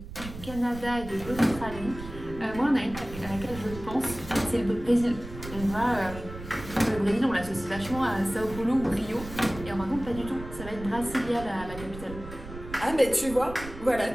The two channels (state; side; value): noise; right; rumble, 12 dB below the sound